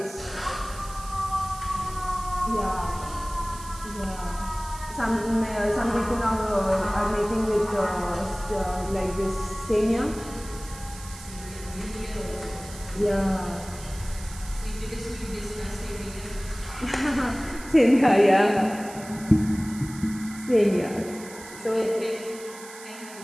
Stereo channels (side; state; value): right; noise; hiss, 16 dB below the sound